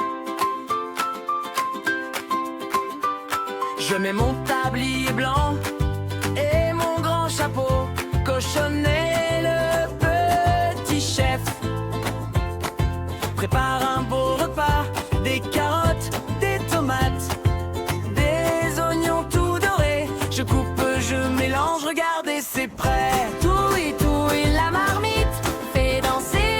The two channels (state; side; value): identical; both; correlation 1.00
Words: Je mets mon tablier blanc et mon grand chapeau, cochonnet le petit chef. Prépare un beau repas, des carottes, des tomates, des oignons tout dorés. Je coupe, je mélange, regardez c'est prêt. Touille la marmite, fait